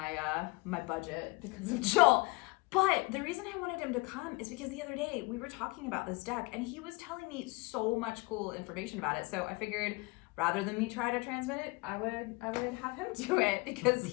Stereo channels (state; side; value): quieter; right; 27.1 dB